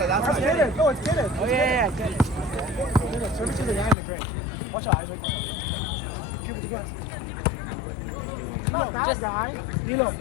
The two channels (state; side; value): drops out; right; at 4.0 s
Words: Get it. Go, it's get it. Oh, yeah, get it. Serve it to the guy in the game. Watch out, Isaac. Keep with the guns. Not that guy. Nilo,